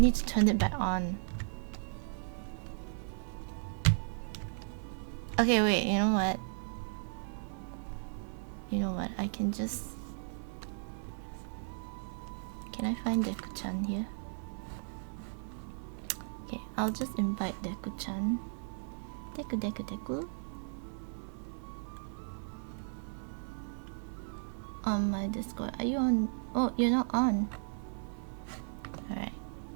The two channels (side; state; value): left; silent; 54 dB below the other